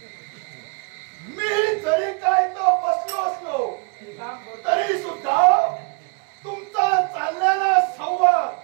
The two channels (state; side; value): quieter; left; 35.4 dB